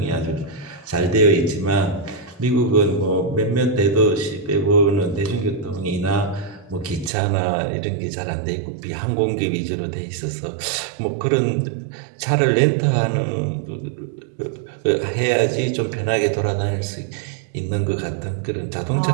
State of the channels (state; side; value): drops out; left; at 7.1 s